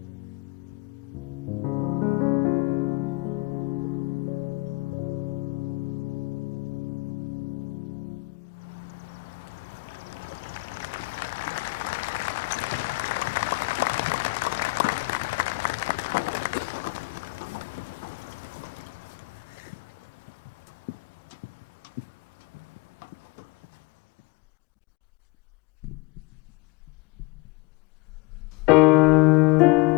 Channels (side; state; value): right; quieter; 26.0 dB